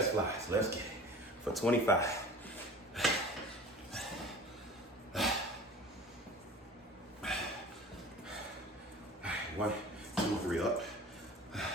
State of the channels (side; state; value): both; normal; correlation 0.41